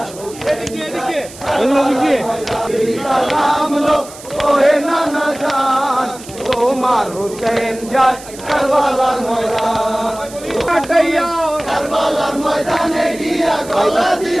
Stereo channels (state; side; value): noise; right; hiss, 17 dB below the sound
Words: এদিকে এদিকে এদিকে সালাম লো ওহে নানা জান তোমার হোসেন যায় কারবালার ময়দান কাটাইয়া কারবালার ময়দানে গিয়া গলা